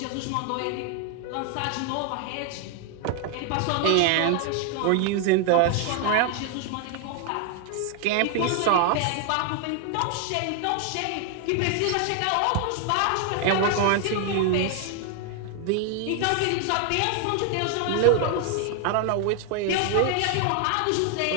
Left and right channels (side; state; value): both; different; correlation 0.01